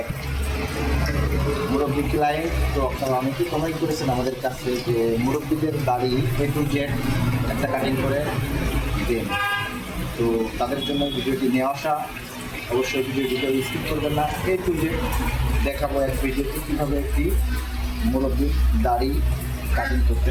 এক মুরব্বী ক্লায়েন্ট। তো আপনারা অনেকেই কমেন্ট করেছেন আমাদের কাছে যে মুরব্বীদের দাড়ি A to Z একটা কাটিং করে দেন। তো তাদের জন্য ভিডিওটি নিয়ে আসা। অবশ্যই ভিডিও স্কিপ করবেন না। A to Z দেখাবো এক ভিডিওতে কীভাবে একটি মুরব্বীর দাড়ি কাটিং করতে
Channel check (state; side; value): identical; both; correlation 1.00